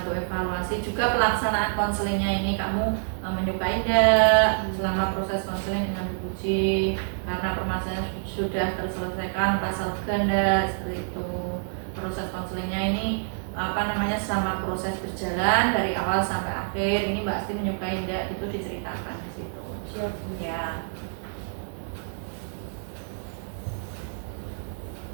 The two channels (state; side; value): silent; left; digital silence